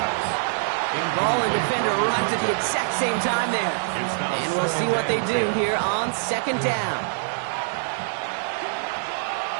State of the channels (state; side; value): silent; left; digital silence